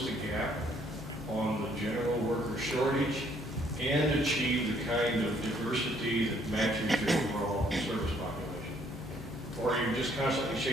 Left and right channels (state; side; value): normal; both; correlation 0.65